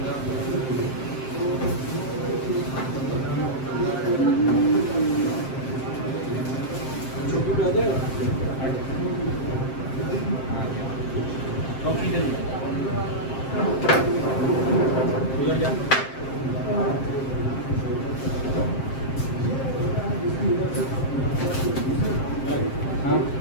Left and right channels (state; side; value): late; right; 7.6 ms